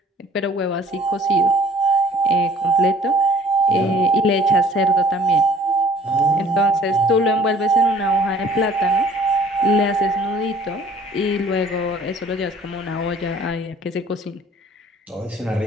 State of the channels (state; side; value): normal; both; correlation 0.54